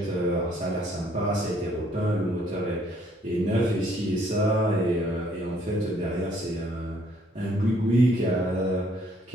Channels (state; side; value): normal; both; correlation 0.64